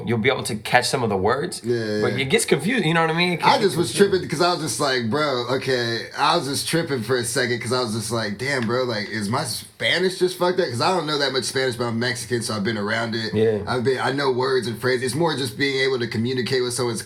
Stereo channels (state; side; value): identical; both; correlation 1.00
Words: be able to catch some of the words, but it gets confused, you know what I mean? I just was tripping because I was just like, bro, okay, I was just tripping for a second because I was just like, damn, bro, like, is my Spanish just fucked up? Because I don't know that much Spanish, but I'm Mexican, so I've been around it. Yeah. I know words and phrases. It's more just being able to communicate with someone is